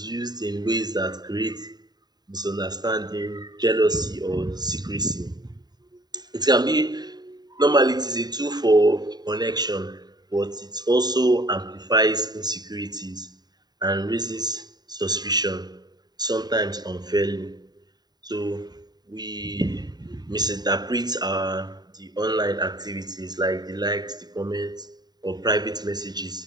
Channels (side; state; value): left; late; 0.20 ms